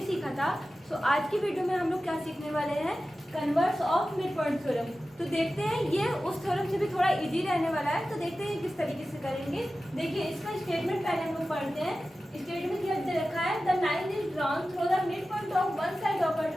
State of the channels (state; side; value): normal; both; correlation 0.94